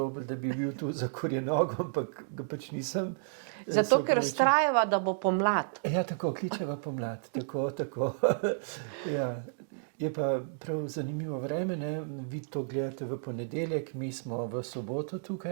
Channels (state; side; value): silent; left; digital silence